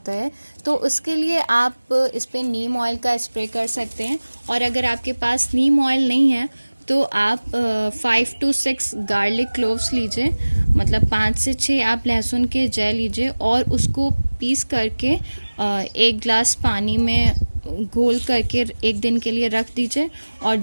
है। तो उसके लिए आप इस पर नीम ऑयल का स्प्रे कर सकते हैं। और अगर आपके पास नीम ऑयल नहीं है तो आप 5 to 6 गार्लिक क्लोव्स लीजिए, मतलब 5 से 6 आप लहसुन के जय लीजिए और उसको पीस करके 1 ग्लास पानी में घोल करके 1 दिन के लिए रख दीजिए और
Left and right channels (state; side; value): inverted; both; correlation -1.00